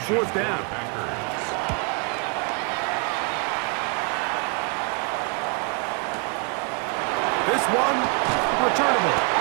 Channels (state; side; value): quieter; left; 33.9 dB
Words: fourth down. This one, returnable.